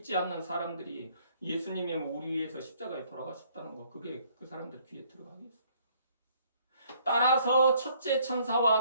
않는 사람들이 예수님이 우리 위해서 십자가에 돌아가셨다는 거, 그게 그 사람들 귀에 들어가겠어요. 따라서 첫째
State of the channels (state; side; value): inverted; both; correlation -0.63